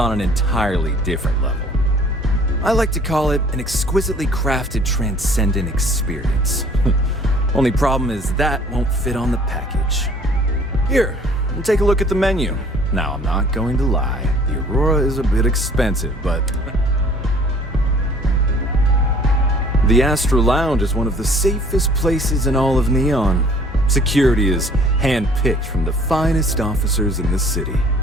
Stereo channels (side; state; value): both; normal; correlation 0.54